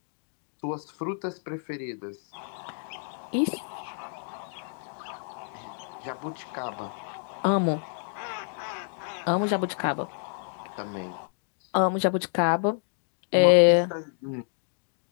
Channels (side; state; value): right; silent; digital silence